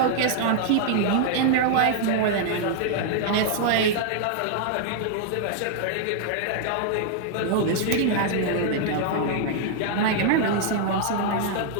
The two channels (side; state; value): both; different; correlation -0.01